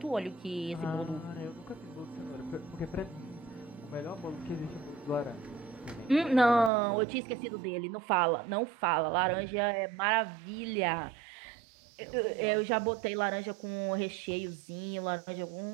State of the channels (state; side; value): drops out; left; at 6.7 s